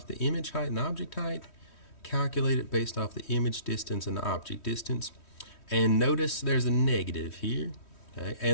the image height and the object height. Calculate it based off the image distance and the object distance. And notice there's a negative here. Okay,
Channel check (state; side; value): late; right; 3.1 ms